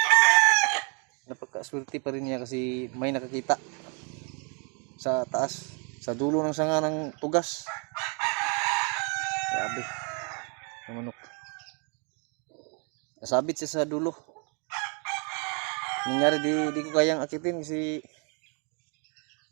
Napagkaswerte pa rin niya kasi may nakakita sa taas, sa dulo ng sanga ng tugas. Grabe. Ang manok. Nasabit siya sa dulo. Nangyari di ko kayang akitin kasi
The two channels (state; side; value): quieter; left; 36.9 dB